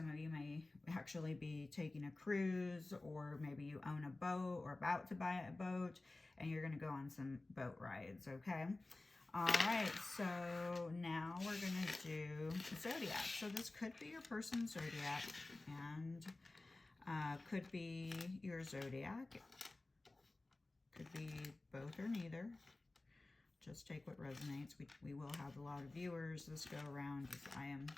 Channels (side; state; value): right; quieter; 3.0 dB